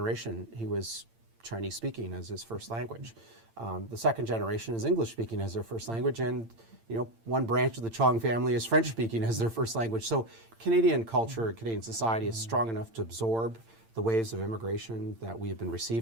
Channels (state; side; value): late; left; 8.8 ms